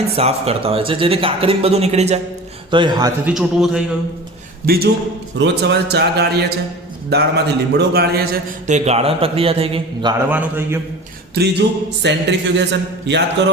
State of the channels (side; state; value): both; normal; correlation 0.37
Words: સાફ કરતા હોય છે જેથી કાકરીને બધું નીકળી જાય. તો એ હાથથી ચૂંટવું થઈ ગયું. બીજું, રોજ સવારે ચા ગાળીએ છે, દાળમાંથી લીમડો ગાળીએ છે તો એ ગાળણ પ્રક્રિયા થઈ ગઈ, ગાળવાનું થઈ ગયું. ત્રીજું, સેન્ટ્રીફ્યુગેશન. યાદ